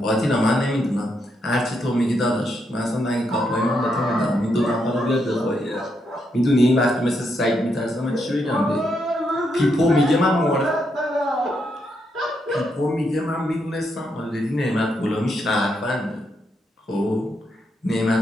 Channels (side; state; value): both; normal; correlation 0.80